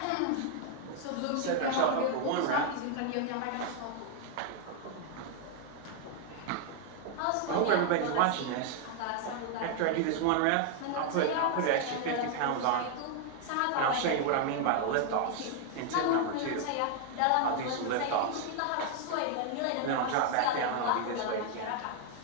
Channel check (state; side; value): different; both; correlation 0.00